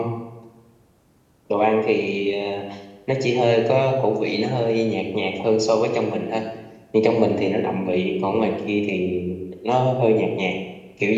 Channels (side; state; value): both; identical; correlation 1.00